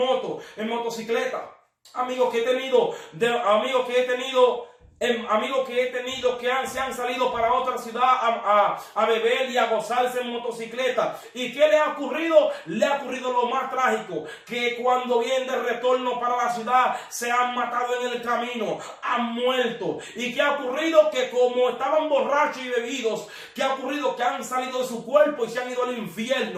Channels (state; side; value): identical; both; correlation 1.00